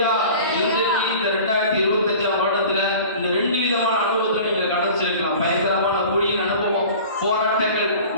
இன்றைக்கு இந்த 2025 வருடத்துல இந்த 2 விதமான அனுபவத்தை நீங்க கடந்திருக்கலாம். பயங்கரமான குழியின் அனுபவம், போராட்டங்கள்,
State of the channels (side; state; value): both; inverted; correlation -0.41